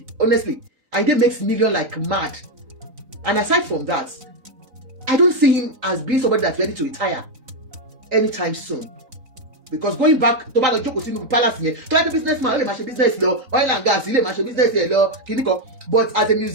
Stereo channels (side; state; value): left; late; 4.0 ms